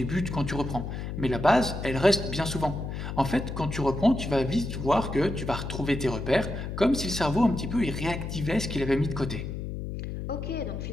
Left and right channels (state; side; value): noise; left; hum, 6 dB below the sound